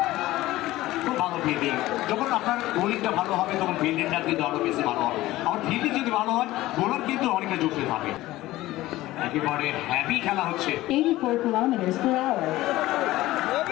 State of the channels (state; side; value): quieter; right; 16.8 dB